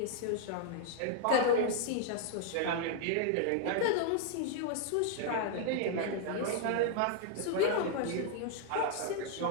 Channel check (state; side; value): different; both; correlation -0.01